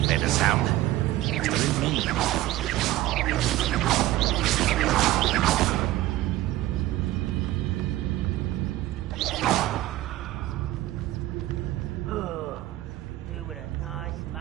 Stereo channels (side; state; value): left; quieter; 15.7 dB